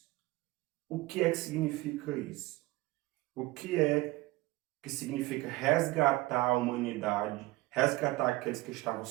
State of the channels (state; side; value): quieter; left; 19.8 dB